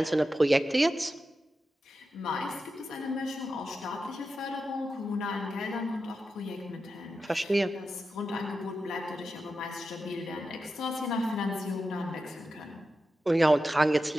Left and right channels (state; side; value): normal; both; correlation 0.91